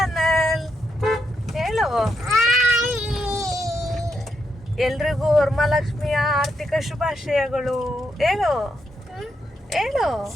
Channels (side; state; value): both; normal; correlation 0.81